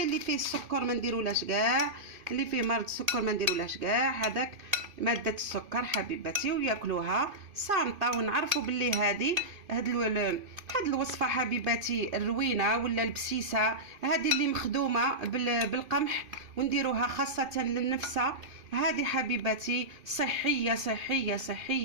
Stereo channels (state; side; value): late; left; 2.5 ms